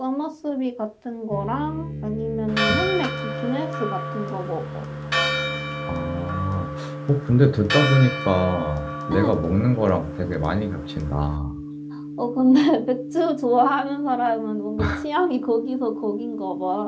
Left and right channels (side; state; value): both; identical; correlation 1.00